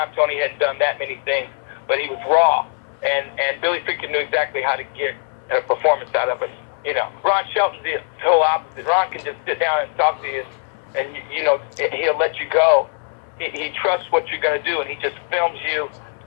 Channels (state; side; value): silent; right; 65 dB below the other